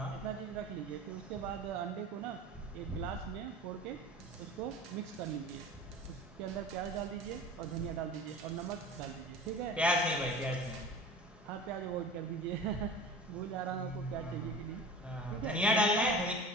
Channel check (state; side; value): normal; both; correlation 0.38